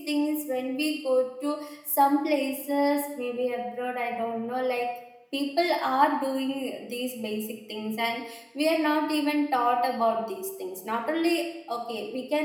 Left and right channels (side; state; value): both; identical; correlation 1.00